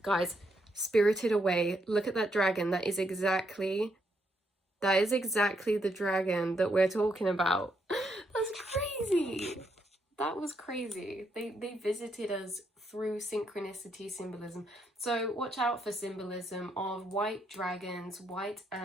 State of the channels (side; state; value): both; normal; correlation 0.77